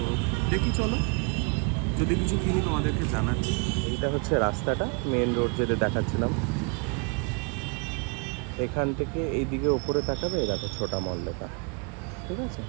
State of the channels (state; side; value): quieter; left; 32.8 dB